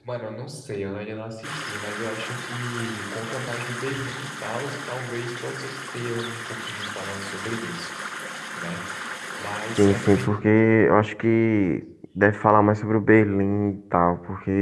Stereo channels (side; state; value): both; identical; correlation 1.00